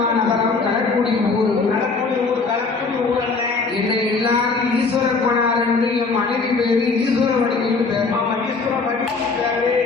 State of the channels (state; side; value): quieter; right; 4.3 dB